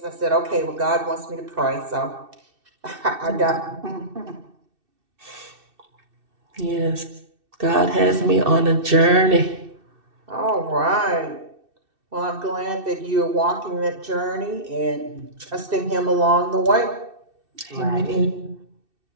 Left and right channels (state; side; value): late; left; 2.6 ms